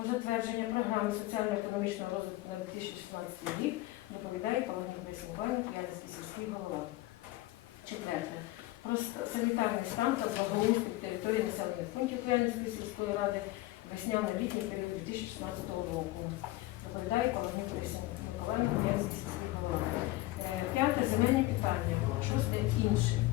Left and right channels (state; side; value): quieter; right; 18.3 dB